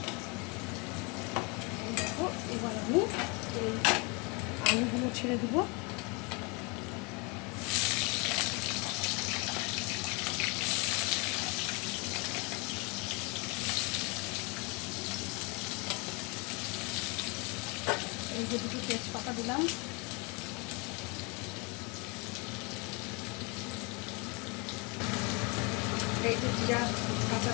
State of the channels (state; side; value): quieter; right; 30.3 dB